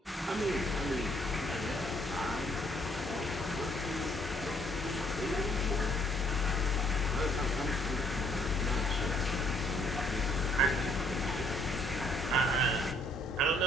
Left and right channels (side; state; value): both; normal; correlation 0.66